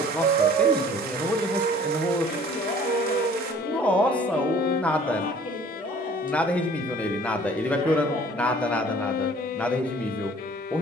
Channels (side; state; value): both; normal; correlation 0.51